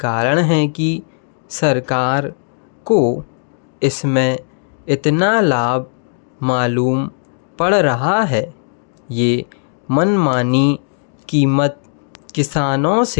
है कि सरकार को इसमें इतना लाभ मालूम पड़ रहा है। ये मनमानी कीमत किसानों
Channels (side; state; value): right; silent; 68 dB below the other